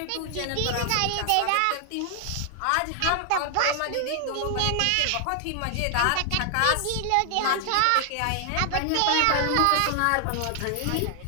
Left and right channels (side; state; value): both; different; correlation 0.00